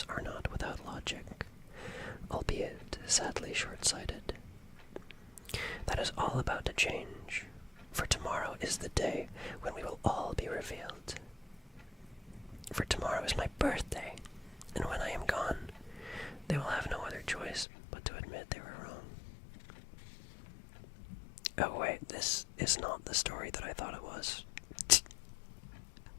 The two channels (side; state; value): right; drops out; at 17.7 s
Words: are not without logic, albeit sadly short-sighted. That is all about to change, for tomorrow is the day when we will all be revealed. For tomorrow is my birthday, and when I am gone, they will have no other choice but to admit they were wrong. Oh wait, this is not the story that I thought it was.